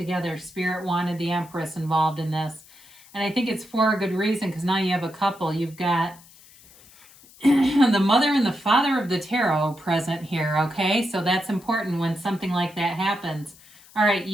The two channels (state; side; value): noise; left; hiss, 24 dB below the sound